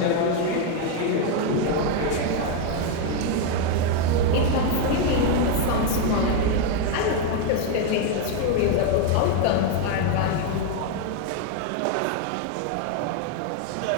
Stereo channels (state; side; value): different; both; correlation 0.01